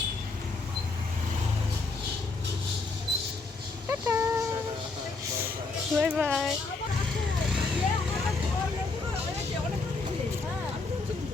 Tata bye bye.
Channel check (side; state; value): right; quieter; 3.8 dB